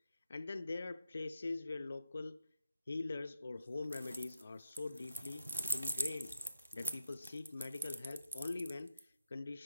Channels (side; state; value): both; inverted; correlation -0.87